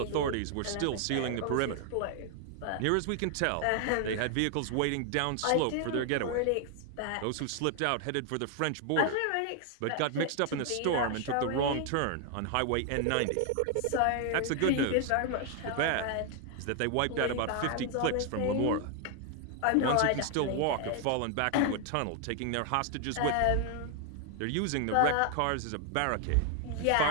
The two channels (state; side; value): different; both; correlation 0.00